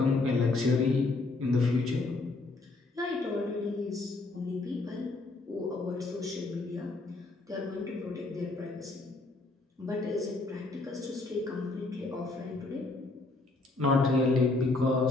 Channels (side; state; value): right; quieter; 3.3 dB